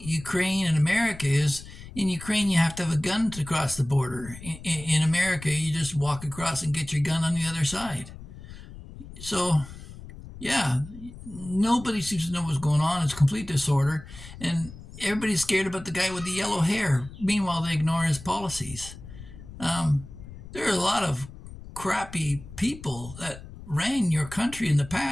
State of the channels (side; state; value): left; noise; rumble, 15 dB below the sound